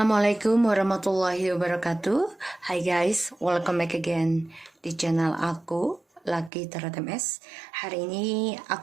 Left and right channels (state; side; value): drops out; left; at 6.5 s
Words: warahmatullahi wabarakatuh. Hai guys, welcome back again di channel aku, Lucky Tarot MS. Hari ini